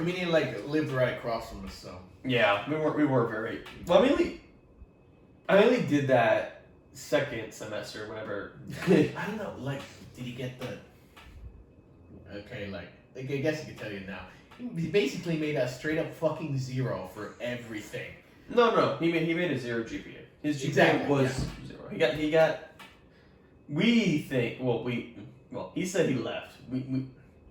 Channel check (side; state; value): both; identical; correlation 1.00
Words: mean, he like lived right across from us, so. Yeah, we were very, well, I mainly did that second semester, whenever. I don't know, like, did he get the... Okay, like I guess I can tell you now. He basically made a straight up fucking 0 for everything. No, he made a 0 GPA. His GPA Exactly, was 0. He got. We think. Well, he said he left.